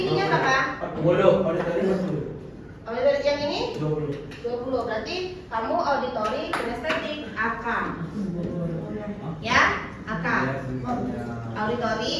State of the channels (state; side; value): identical; both; correlation 1.00